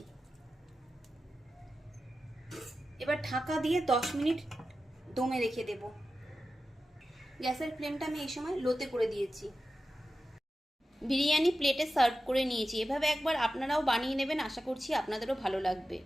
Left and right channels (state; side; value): normal; both; correlation 0.92